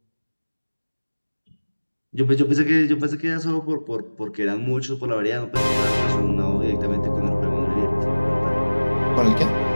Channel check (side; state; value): both; inverted; correlation -1.00